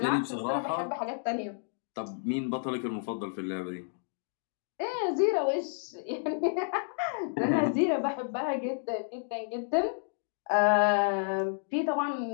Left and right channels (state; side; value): silent; right; digital silence